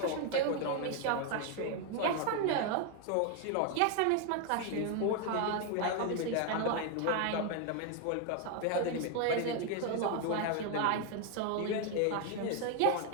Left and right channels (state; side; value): different; both; correlation 0.01